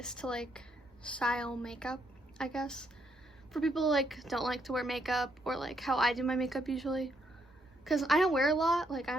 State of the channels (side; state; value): both; normal; correlation 0.74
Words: to style makeup, I guess. For people who don't like to wear makeup, or how I do my makeup usually. Cause I don't wear a lot, I